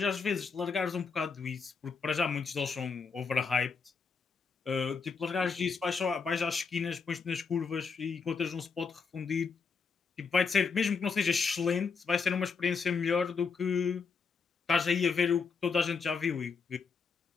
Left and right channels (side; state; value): right; quieter; 5.3 dB